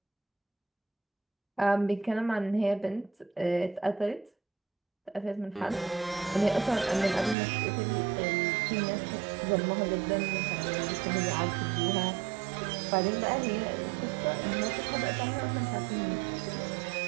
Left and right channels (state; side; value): drops out; left; at 7.4 s